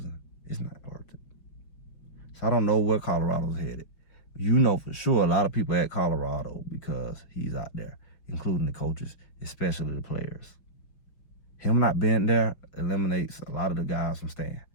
it's not worth it. So I don't know where Colorado's headed. You know for sure a lot of people at Colorado because he's out there, including the coaches, especially the players. Him not being there eliminates a lot of the guys from staying.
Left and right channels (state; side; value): late; right; 5.7 ms